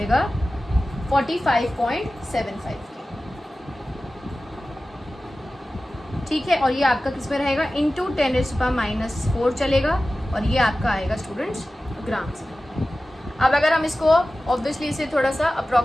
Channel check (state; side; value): normal; both; correlation 0.96